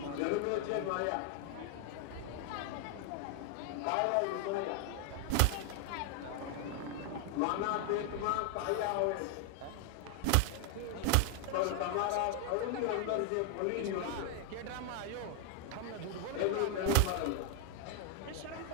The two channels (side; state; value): both; different; correlation 0.00